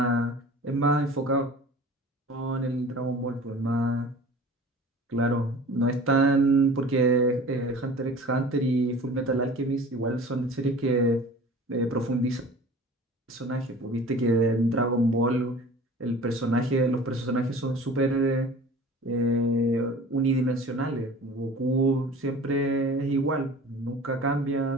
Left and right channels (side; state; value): both; normal; correlation 0.42